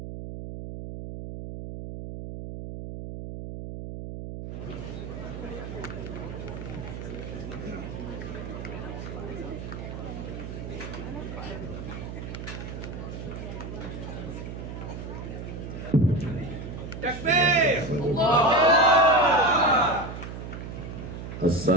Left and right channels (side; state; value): right; noise; hum, 8 dB below the sound